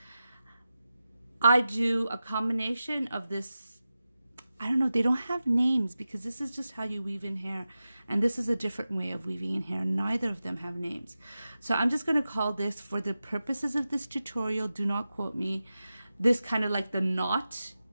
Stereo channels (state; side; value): inverted; both; correlation -0.93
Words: I do a combination of this, I don't know, they don't have names because this is just how you weave in hair. And this is a different way of weaving in hair. Neither of them have names. So I'm just going to call this, for the purposes of this tutorial, do not quote me, this kind of like the knot